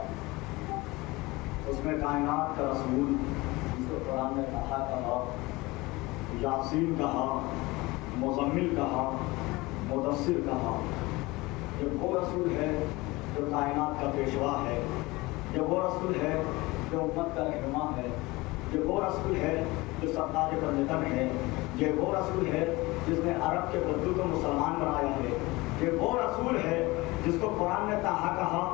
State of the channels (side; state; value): right; quieter; 21.9 dB